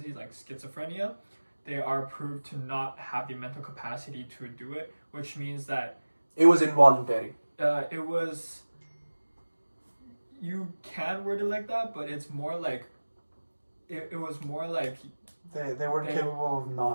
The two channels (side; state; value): both; inverted; correlation -1.00